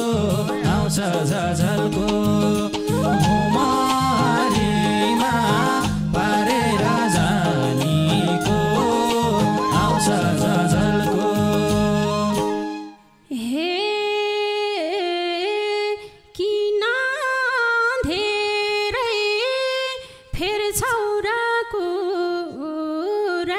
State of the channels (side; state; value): both; identical; correlation 1.00